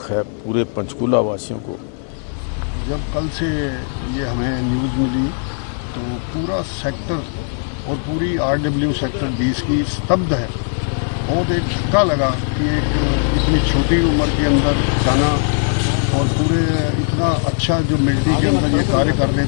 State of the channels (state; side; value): silent; right; 67 dB below the other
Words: है पूरे पंचकूला वासियों को। जब कल से ये हमें न्यूज़ मिली तो पूरा सेक्टर और पूरी RW सेक्टर 20 की स्तब्ध है। बहुत एक धक्का लगा कि एक इतनी छोटी उम्र के अंदर जाना और पूरे इतना अच्छा जो मिलिट्री के अंदर ये कार्य कर रहे